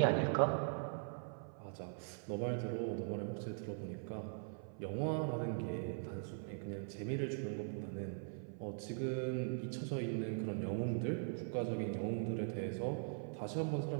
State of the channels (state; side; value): silent; left; 50 dB below the other